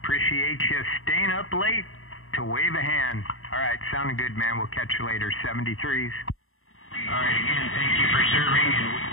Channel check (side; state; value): right; late; 0.61 ms